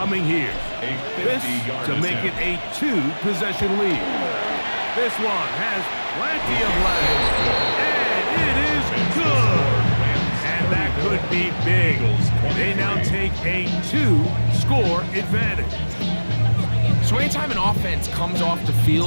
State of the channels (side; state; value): both; inverted; correlation -1.00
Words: here. This to make it a 2-possession lead. This one has plenty of legs, and it is good. And that could be big. They now take a 2-score advantage. So anytime an offense comes off the